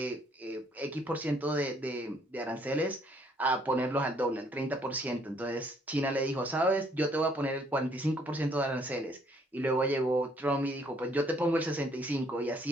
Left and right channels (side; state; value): both; normal; correlation 0.65